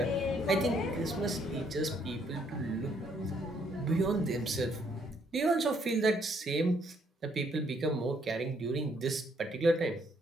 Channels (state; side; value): normal; both; correlation 0.69